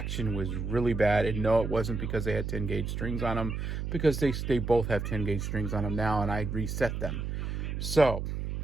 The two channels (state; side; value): noise; right; hum, 3 dB below the sound